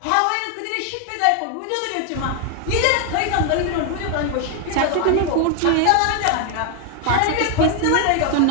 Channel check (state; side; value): different; both; correlation 0.00